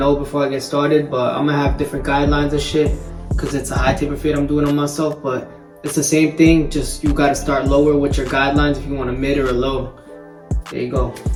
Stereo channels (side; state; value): both; identical; correlation 1.00